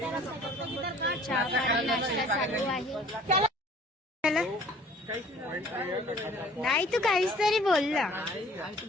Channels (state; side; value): normal; both; correlation 0.53